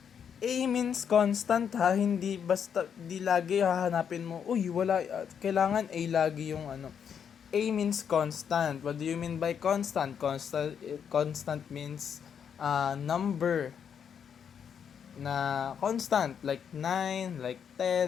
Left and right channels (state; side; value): quieter; right; 7.7 dB